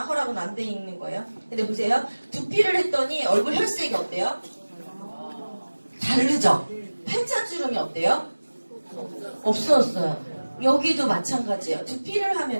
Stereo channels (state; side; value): inverted; both; correlation -1.00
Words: 허락은 안 돼 있는 거예요. 근데 보세요. 두피를 했더니 얼굴 혈색이 어때요? 다르죠? 팔자주름이 어때요? 없어졌어요. 여기도 마찬가지예요. 두피를